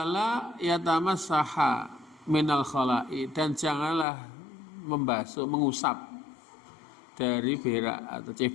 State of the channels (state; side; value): drops out; right; at 4.0 s